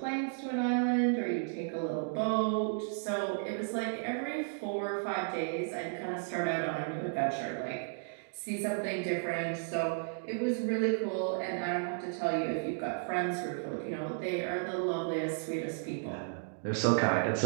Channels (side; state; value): left; silent; digital silence